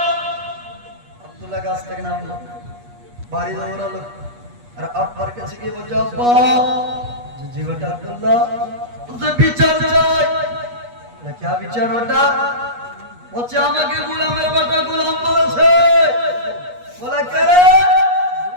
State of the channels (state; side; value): late; left; 8.3 ms